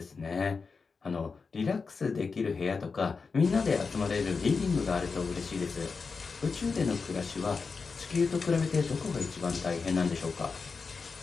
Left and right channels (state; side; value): quieter; right; 4.8 dB